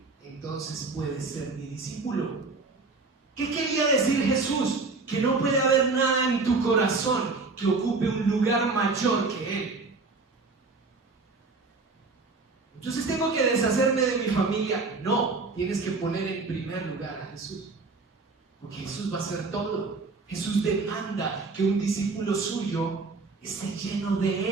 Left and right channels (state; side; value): quieter; left; 3.9 dB